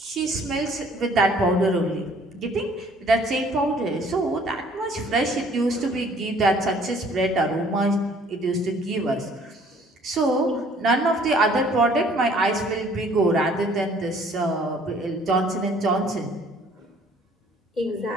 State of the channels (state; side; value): normal; both; correlation 0.57